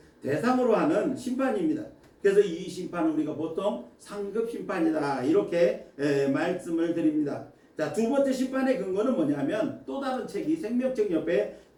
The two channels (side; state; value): both; identical; correlation 1.00